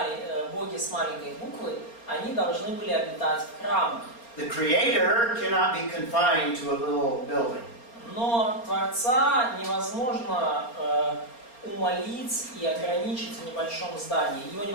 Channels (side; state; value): right; late; 4.3 ms